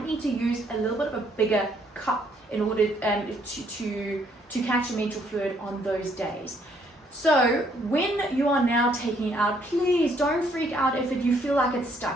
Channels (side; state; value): both; normal; correlation 0.68